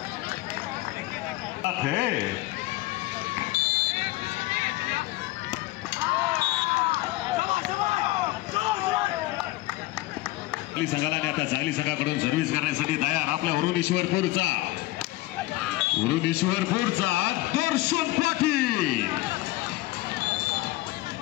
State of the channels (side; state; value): right; quieter; 18.6 dB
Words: संघाला आता चांगली संघाकडून सर्व्हिस करण्यासाठी तयार आपल्या वरुणेश्वरपूरचा दर्शन पाटील.